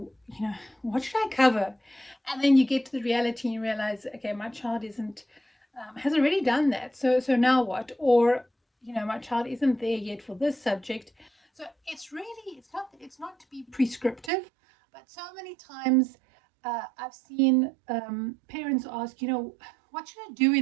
what should I cover? And then you get to the reality and you realize, okay, my child isn't has already done that. So now what? Or my child isn't there yet for this subject. So it's not to be prescriptive, but so many times I've seen parents ask, what should I do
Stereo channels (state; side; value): drops out; left; at 14.3 s